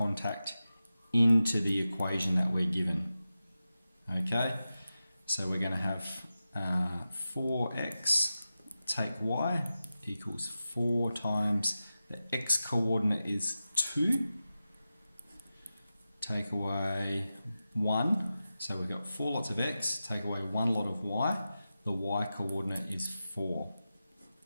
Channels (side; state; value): both; inverted; correlation -0.93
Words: into the equation that we're given. Okay. So we're going to have 4x take y equals 4 times the x coordinate is 2. Take away 1, so we've got 4 lots of x, take away 1 lot of y, the y coordinate is 4.